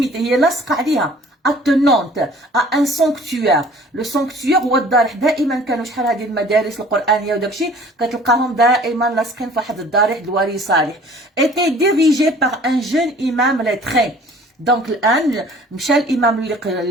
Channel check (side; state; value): both; normal; correlation 0.50